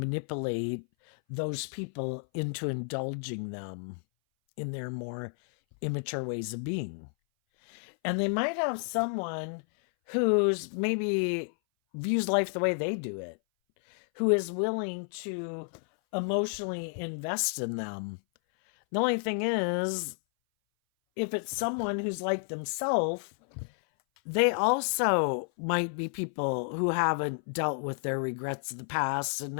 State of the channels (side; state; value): right; silent; 57 dB below the other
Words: those people into indulging them in their more immature ways of being. And they might have someone who's maybe views life the way they do it, who is willing to emotionally invest in them. The only thing is, if it's someone who's like themselves, they also might be people who haven't dealt with their regrets of the past and